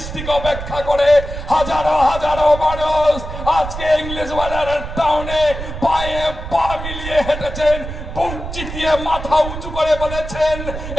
অপেক্ষা করে হাজারো হাজারো মানুষ আজকে ইংলিশ বাজারের টাউনে পায়ে পা মিলিয়ে হেঁটেছেন, বুক চিতিয়ে মাথা উঁচু করে বলেছেন,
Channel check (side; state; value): right; noise; rumble, 8 dB below the sound